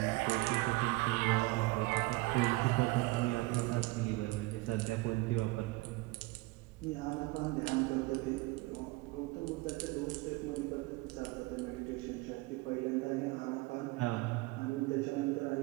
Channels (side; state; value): left; quieter; 22.0 dB